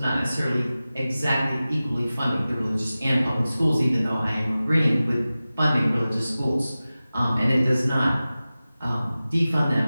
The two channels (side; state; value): both; inverted; correlation -0.96